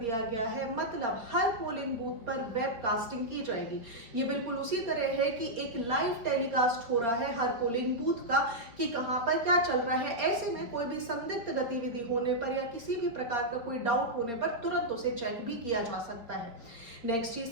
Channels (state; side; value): late; left; 4.3 ms